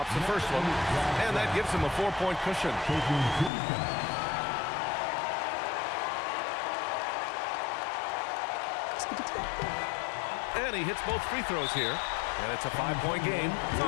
the first one, and that gives him a 4-point cushion. Taking 2 shots. And he hits both free throws here, and it's a 5-point game.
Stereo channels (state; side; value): drops out; right; at 3.5 s